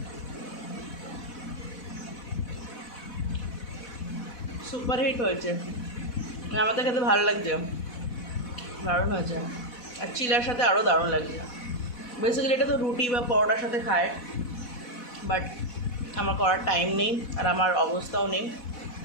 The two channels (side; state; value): right; late; 4.1 ms